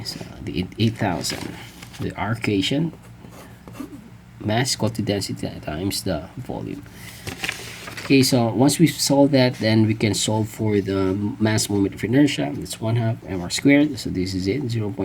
So the 8,000, the R equation, mass equal to density times the volume. Okay, so once we solve that, then we can solve for the mass moment of inertia. It's 1/2 mr squared, so this is it,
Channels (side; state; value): both; identical; correlation 1.00